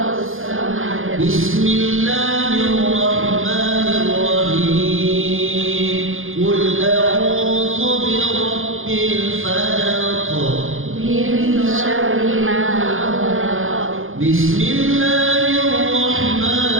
Bismillahirrahmanirrahim. Qul a'udzu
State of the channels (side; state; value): left; late; 0.59 ms